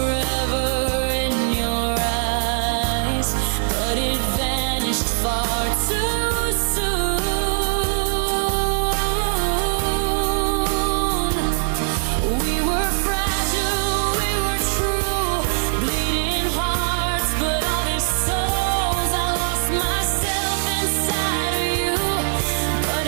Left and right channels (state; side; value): silent; left; 61 dB below the other